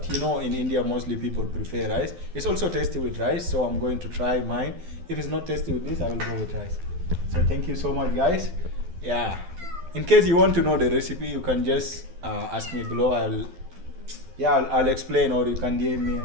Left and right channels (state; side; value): late; left; 12 ms